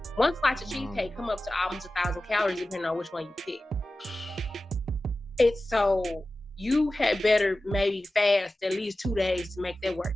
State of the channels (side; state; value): both; normal; correlation 0.95